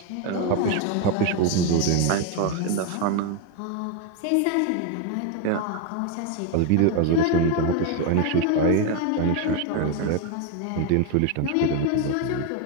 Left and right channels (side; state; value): both; different; correlation 0.02